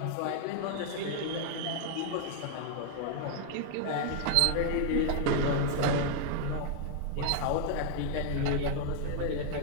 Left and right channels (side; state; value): both; different; correlation -0.01